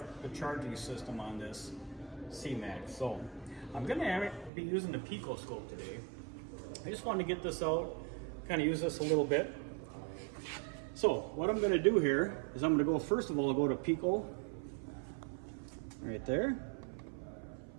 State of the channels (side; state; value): left; drops out; at 4.5 s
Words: the charging system on this C-Max. So I'm going to be using the PICO Scope today. I just wanted to get this out, kind of use this a little bit. So what I'm going to do here is I'm going to go, first of all, I'll go to PICO right there.